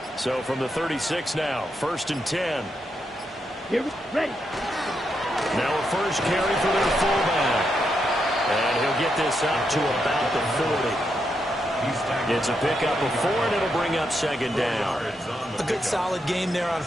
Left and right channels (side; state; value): both; normal; correlation 0.82